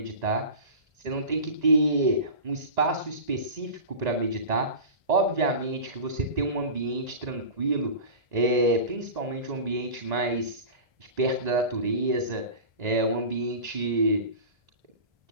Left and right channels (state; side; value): late; left; 1.9 ms